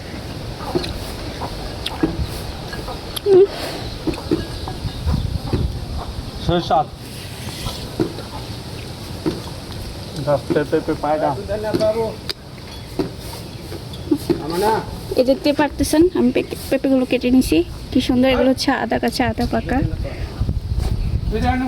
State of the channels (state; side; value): identical; both; correlation 1.00